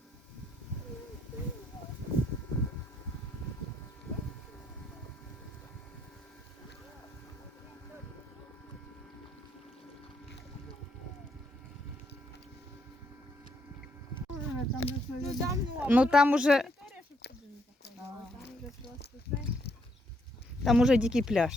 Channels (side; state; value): both; normal; correlation 0.73